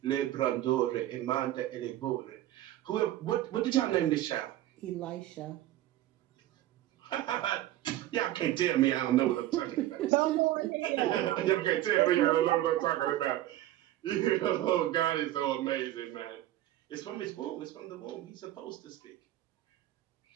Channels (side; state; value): left; quieter; 14.3 dB